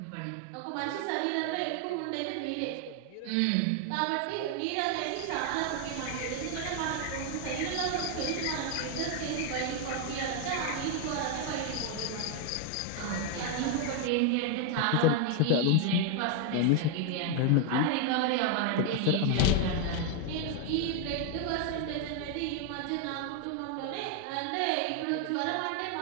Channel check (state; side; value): different; both; correlation 0.00